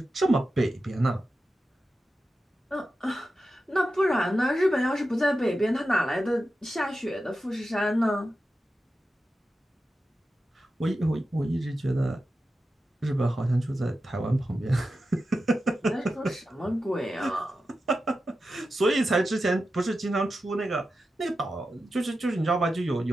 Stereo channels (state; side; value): normal; both; correlation 0.91